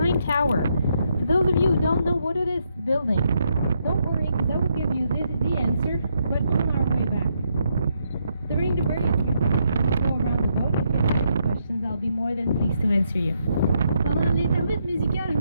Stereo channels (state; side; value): inverted; both; correlation -0.77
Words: tower. For those of you who don't know what it is building, don't worry, because I will give you the answer, but on our way back. During the break, go around the boat. If you have any questions, I'll be more than pleased to answer you. Pendant l'intermède musical, je